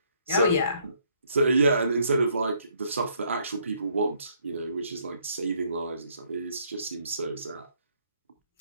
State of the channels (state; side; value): inverted; both; correlation -0.68